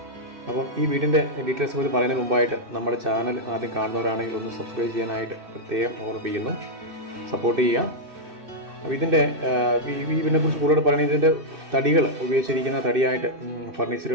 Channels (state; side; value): late; left; 2.6 ms